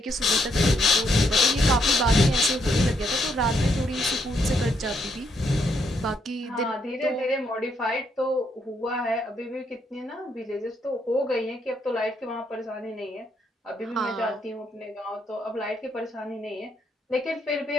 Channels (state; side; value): normal; both; correlation 0.75